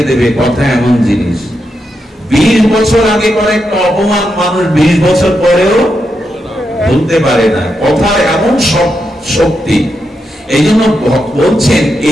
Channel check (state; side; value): normal; both; correlation 0.84